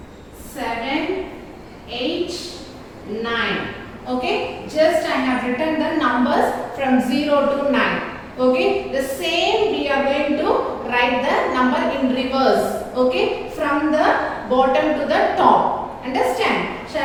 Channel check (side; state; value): both; identical; correlation 1.00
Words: 7, 8, 9. Okay, just I have written the numbers from 0 to 9. Okay, the same we are going to write the number in reverse. Okay, from the bottom to the top. Understand?